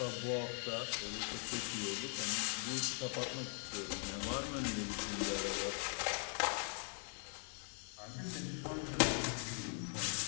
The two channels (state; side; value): silent; right; 50 dB below the other